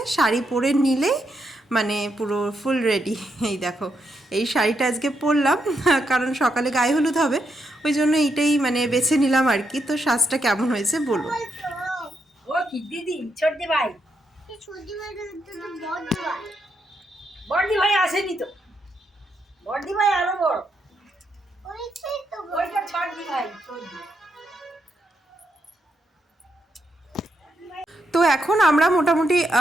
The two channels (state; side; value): normal; both; correlation 0.81